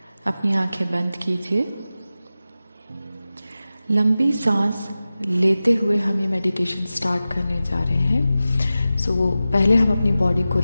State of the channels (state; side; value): inverted; both; correlation -0.95